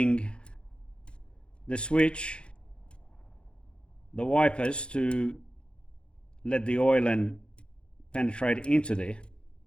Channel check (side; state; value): right; late; 0.055 ms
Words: the switch, the wipers, to let the oil and penetrate into there,